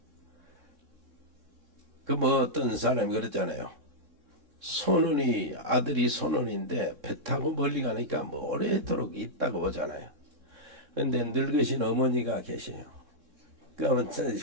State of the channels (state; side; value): late; left; 3.6 ms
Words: 그 뭐 어떤 사람이 그랬잖아요. 손원이 아들이 손원인데 배 타고 멀리 가니까 뭐 오래도록 있다고 보잖아요. 근데 늙으신 어머니가 계세요.